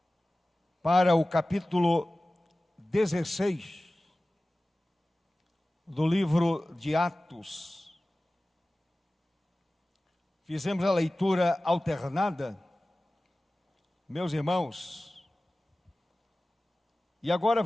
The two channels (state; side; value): normal; both; correlation 0.97